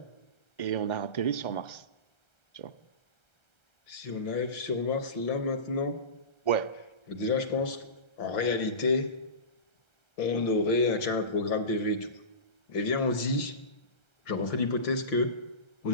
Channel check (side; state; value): right; late; 1.3 ms